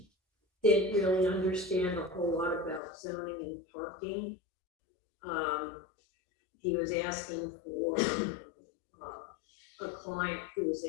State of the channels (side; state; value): right; drops out; at 2.8 s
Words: didn't really understand a whole lot about zoning and parking. He was asking for a client who was